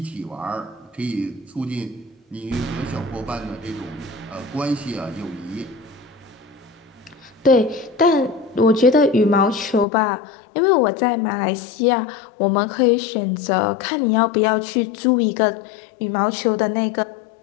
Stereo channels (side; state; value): right; drops out; at 9.9 s